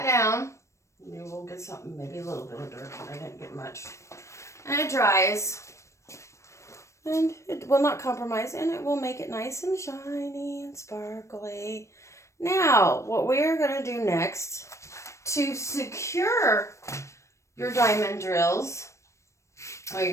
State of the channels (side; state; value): right; late; 0.14 ms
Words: down. You will get something, maybe a little bit of dirt, but I didn't get much. And it dries. And it will not compromise, and it will make it nice and shiny and sparkly. Now, what we are going to do next to secure your diamond drills, or